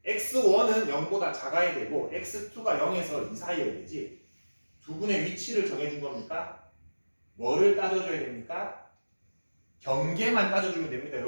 x1은 0보다 작아야 되고 x2가 0에서 2 사이여야 되지. 두근의 위치를 정해준 겁니까? 뭐를 따져줘야 됩니까? 경계만 따져주면 됩니다.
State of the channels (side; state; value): both; inverted; correlation -1.00